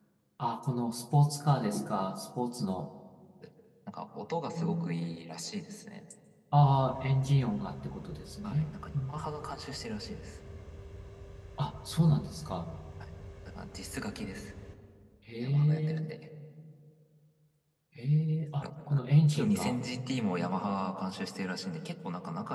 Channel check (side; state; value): both; identical; correlation 1.00